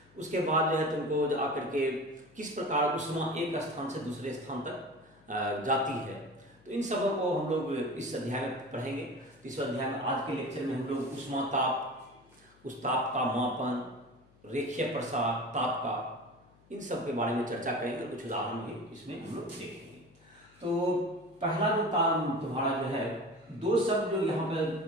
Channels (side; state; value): left; noise; hum, 29 dB below the sound